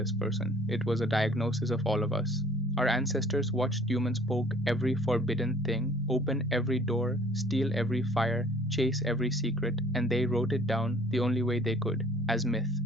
person, it was a diagnosis of all of us. Our ancestors watched humans poke every forbidden thing, open every door, steal every fire, chase every secret, and they wrote it down the only way they could, as myth.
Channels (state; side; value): normal; both; correlation 0.54